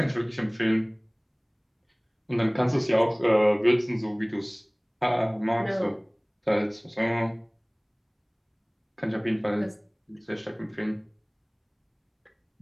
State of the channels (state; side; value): identical; both; correlation 1.00